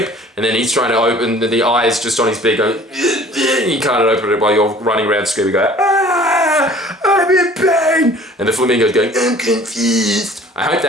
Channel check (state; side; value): normal; both; correlation 0.49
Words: And then he's trying to open, the eye is just on his beak going, and you can't open it while you're running around screaming, going, ah, I'm in pain. And the flamingo's going, I'm confused. I hope